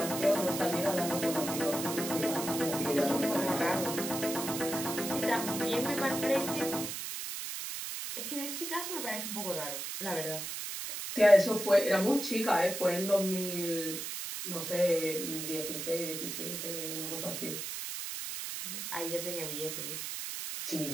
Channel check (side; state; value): right; noise; hiss, 5 dB below the sound